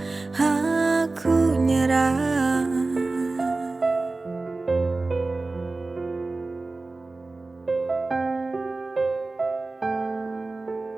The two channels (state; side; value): quieter; left; 3.4 dB